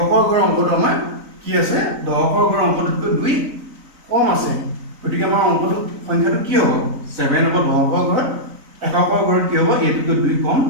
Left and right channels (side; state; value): left; late; 3.9 ms